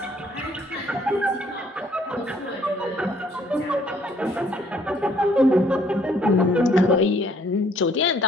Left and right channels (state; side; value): normal; both; correlation 0.63